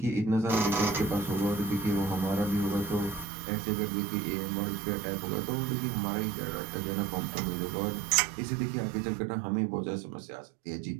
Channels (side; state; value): left; drops out; at 3.2 s